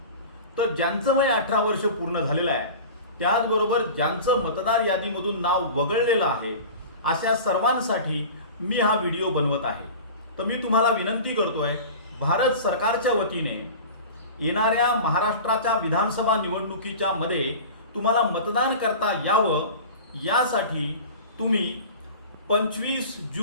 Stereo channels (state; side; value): inverted; both; correlation -0.36